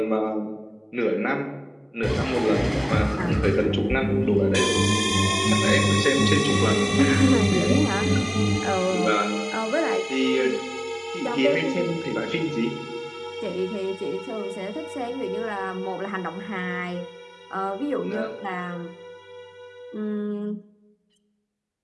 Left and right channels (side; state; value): both; identical; correlation 1.00